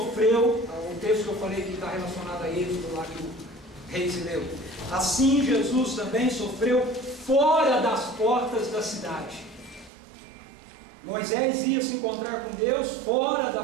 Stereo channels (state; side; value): drops out; left; at 9.9 s